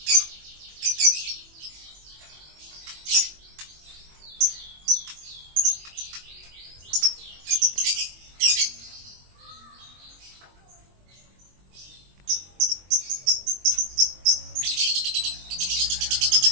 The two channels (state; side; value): late; left; 22 ms